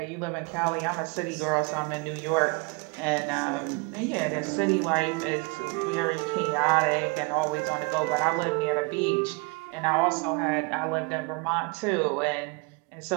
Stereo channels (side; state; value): left; quieter; 30.2 dB